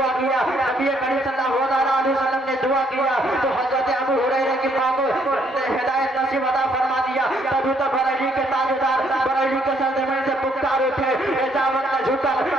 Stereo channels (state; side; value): normal; both; correlation 0.69